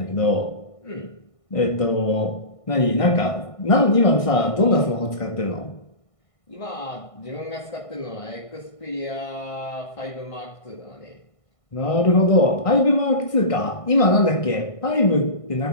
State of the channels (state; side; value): late; right; 1.6 ms